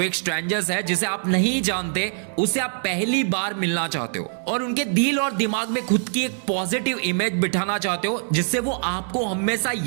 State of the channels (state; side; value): silent; left; digital silence